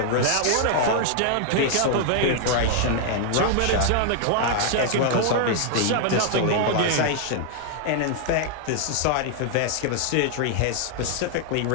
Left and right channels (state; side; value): different; both; correlation -0.01